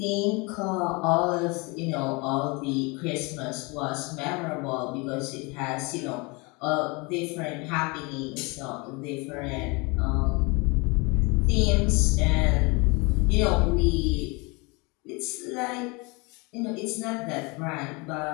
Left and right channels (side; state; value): right; quieter; 28.0 dB